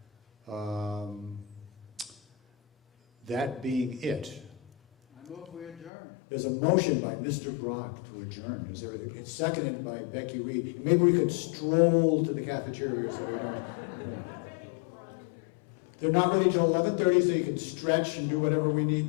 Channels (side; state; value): right; drops out; at 5.9 s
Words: That being it. I move we adjourn. There's a motion by Mr. Brock to adjourn. It's seconded by Becky Reed. And maybe we could stroll to the cafeteria so we don't. They're not ready till 11:30, so you can stretch and do whatever we need